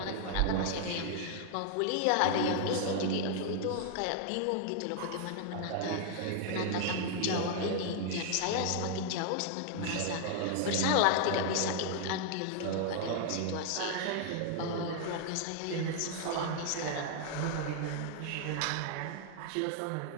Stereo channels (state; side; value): different; both; correlation 0.00